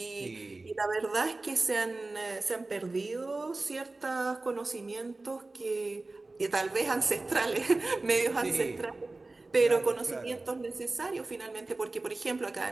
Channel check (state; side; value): quieter; left; 3.2 dB